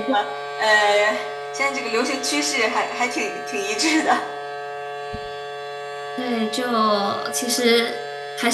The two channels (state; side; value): identical; both; correlation 1.00